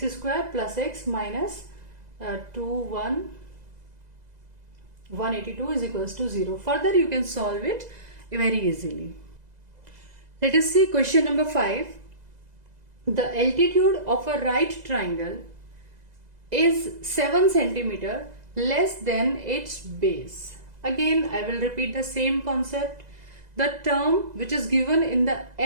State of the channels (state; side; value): late; left; 2.0 ms